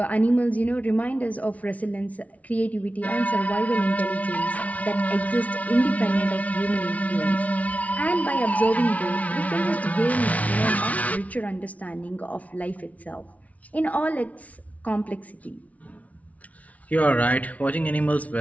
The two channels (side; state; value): right; late; 0.069 ms